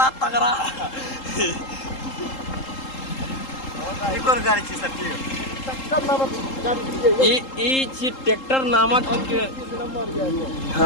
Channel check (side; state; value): right; late; 3.8 ms